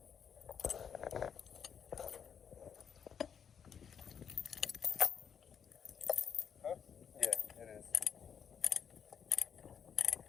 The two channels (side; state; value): right; quieter; 7.6 dB